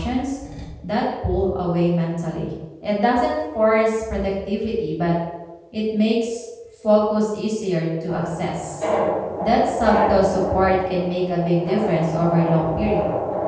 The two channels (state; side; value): identical; both; correlation 1.00